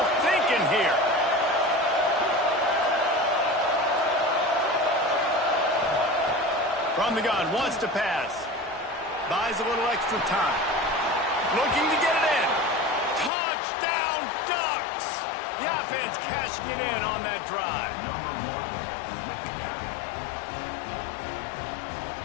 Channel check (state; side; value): drops out; right; at 13.3 s